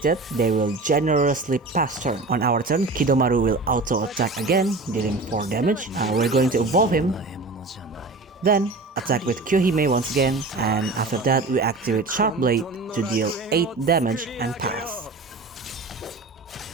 they will generously pass turn. On our turn, Kidoumaru will auto-attack again, dealing 4 damage. We're going to evolve him. Then, attack with Kyohime once again, and after that we activate Sharp Blade to deal 8 damage and pass.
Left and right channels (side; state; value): left; quieter; 3.4 dB